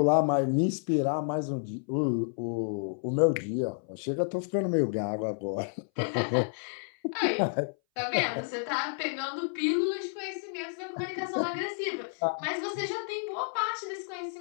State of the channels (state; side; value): silent; right; 58 dB below the other